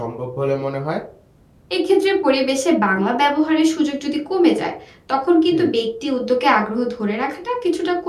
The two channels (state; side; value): identical; both; correlation 1.00